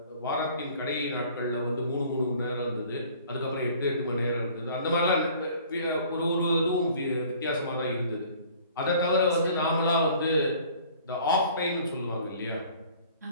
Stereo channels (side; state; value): both; inverted; correlation -0.52